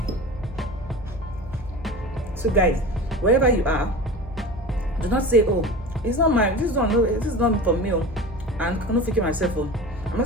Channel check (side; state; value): both; normal; correlation 0.33